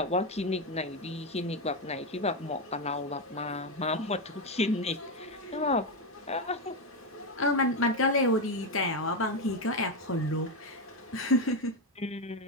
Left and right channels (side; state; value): both; normal; correlation 0.08